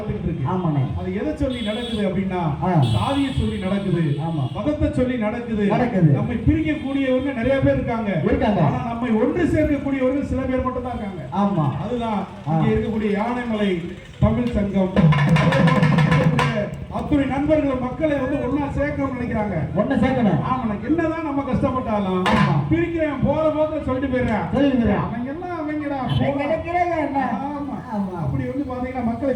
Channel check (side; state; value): both; identical; correlation 1.00